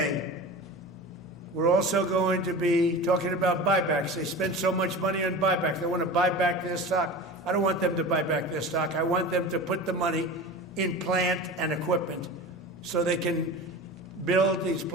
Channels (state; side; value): normal; both; correlation 0.33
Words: We're also going to be talking about buybacks. They spend so much money on buybacks. They want to buy back their stock. I don't want them to buy back their stock. I want them to put the money in plant and equipment so they can build these